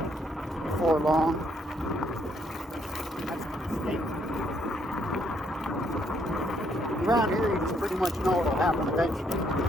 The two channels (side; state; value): both; normal; correlation 0.71